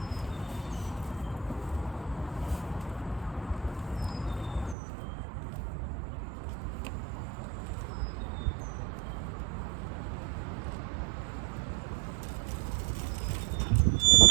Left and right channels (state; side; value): drops out; left; at 4.8 s